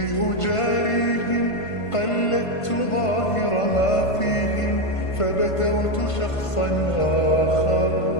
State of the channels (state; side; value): late; right; 1.5 ms